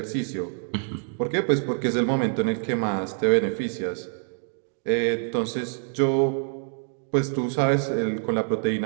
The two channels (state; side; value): silent; left; 61 dB below the other